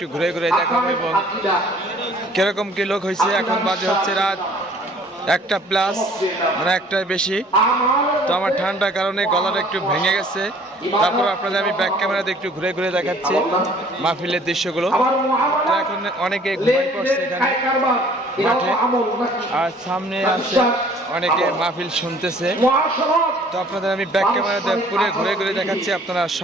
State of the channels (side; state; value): both; normal; correlation 0.54